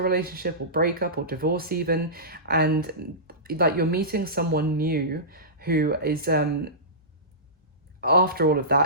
relationship or breakup or divorce even, and like you're meeting someone new who is after all of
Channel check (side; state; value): both; normal; correlation -0.20